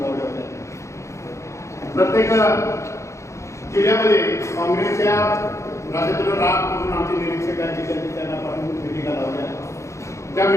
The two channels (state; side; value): late; right; 0.14 ms